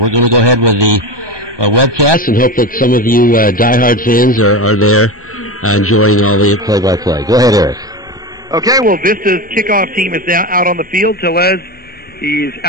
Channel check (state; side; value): noise; left; rumble, 28 dB below the sound